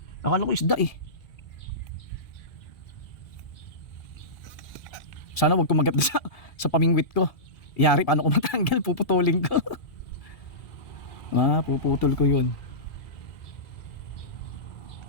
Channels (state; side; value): late; right; 2.4 ms